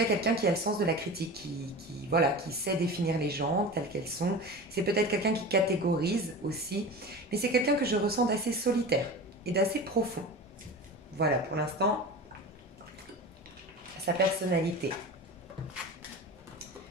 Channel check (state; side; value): normal; both; correlation 0.32